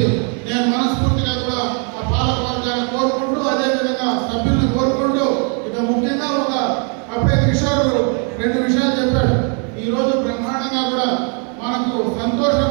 నేను మనస్ఫూర్తిగా కూడా ఆ పాలక వర్గాన్ని కోరుకుంటూ అదేవిధంగా సభ్యులను కోరుకుంటూ ఇక ముఖ్యంగా అప్పుడే కిషోర్ 2 విషయాలు చెప్పాడు. ఈ రోజు బ్రహ్మాండంగా కూడా మనకు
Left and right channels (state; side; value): quieter; left; 39.6 dB